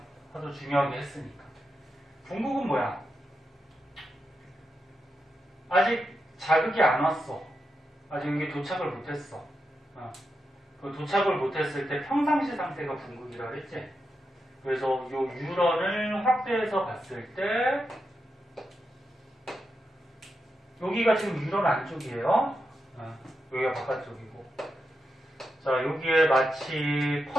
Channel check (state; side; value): normal; both; correlation 0.87